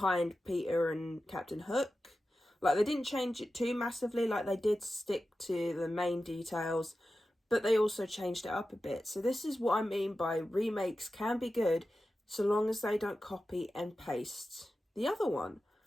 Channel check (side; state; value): both; normal; correlation 0.93